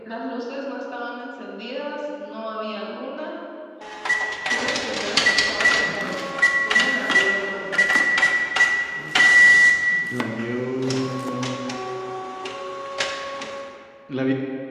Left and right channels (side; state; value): both; identical; correlation 1.00